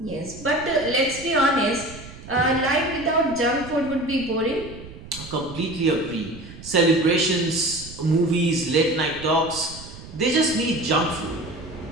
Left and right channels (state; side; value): noise; right; rumble, 16 dB below the sound